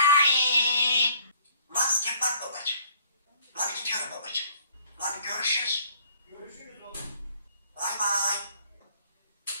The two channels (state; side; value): inverted; both; correlation -0.58